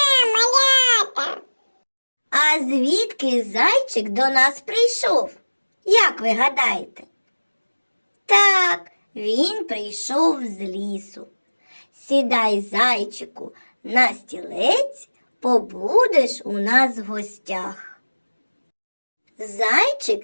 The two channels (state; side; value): inverted; both; correlation -1.00